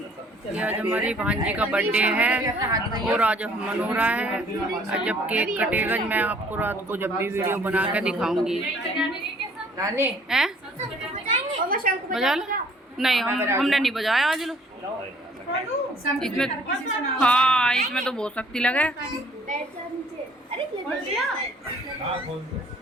आज हमारी भांजी का बर्थडे है और आज मना रहा है। जब केक कटेगा मैं आपको रात को जब भी वीडियो बना के दिखाऊंगी। हैं? बजा लो? नहीं, हमने नहीं बजाया आज। लो इसमें, हाँ इसमें तो बहुत शक्ति लगे।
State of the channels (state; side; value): normal; both; correlation 0.58